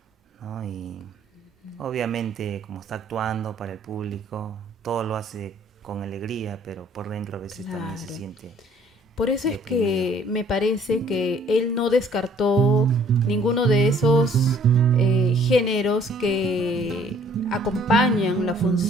¿no? Y obviamente como está actuando para el público, todo lo hace con alegría, pero por dentro a veces también se Claro. siente Por eso es deprimido. que me parece que él no descartó ninguno de esos géneros que acompañan la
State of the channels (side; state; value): both; normal; correlation 0.59